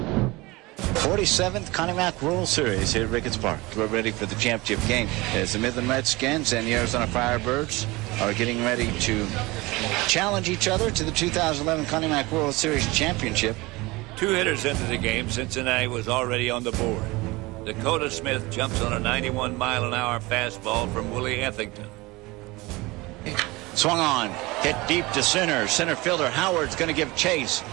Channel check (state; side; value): quieter; left; 22.4 dB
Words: 47th Connie Mack World Series here at Ricketts Park. We're ready for the championship game as the Midland Redskins and the Arizona Firebirds are getting ready to challenge each other to the 2011 Connie Mack World Series Championship. 2 hitters into the game, Cincinnati was already on the board. Dakota Smith jumps on a 91-mile-an-hour fastball from Willie Ethington. Swung on, hit deep to center. Center fielder Howard's going to give chase.